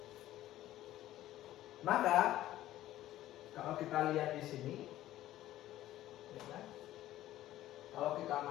Maka kalau kita lihat di sini, ya kan? Kalau kita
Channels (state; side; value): quieter; right; 14.2 dB